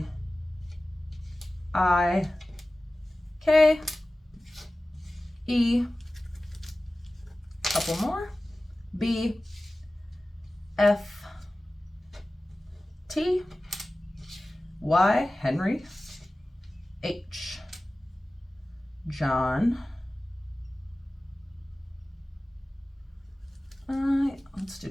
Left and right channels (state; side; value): normal; both; correlation 0.96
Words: I, K, E, couple more, B, F, T, Y, Henry, H, John, let's do